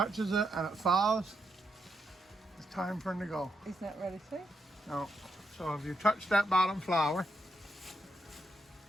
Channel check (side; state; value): both; normal; correlation 0.81